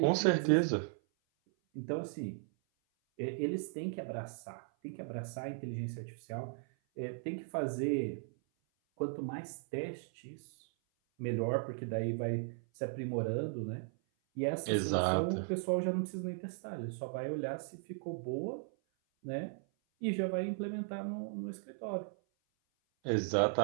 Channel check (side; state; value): left; silent; 53 dB below the other